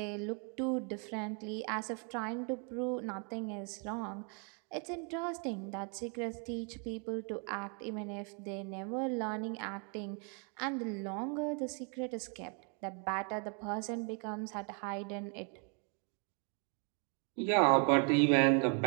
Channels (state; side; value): quieter; left; 38.0 dB